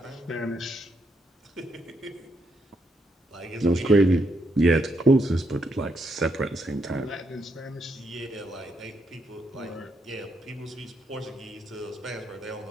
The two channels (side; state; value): both; normal; correlation 0.78